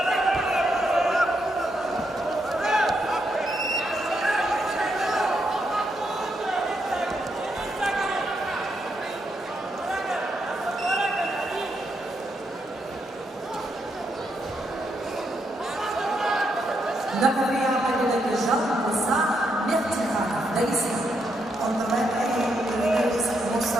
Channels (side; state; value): both; normal; correlation 0.80